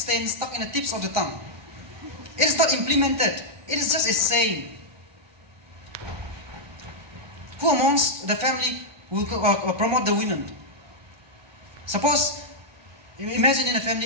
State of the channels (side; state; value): left; late; 1.2 ms